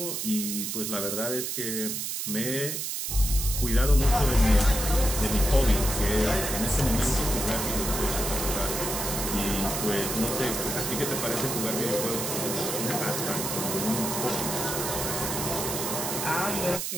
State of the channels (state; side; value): noise; right; hiss, 3 dB below the sound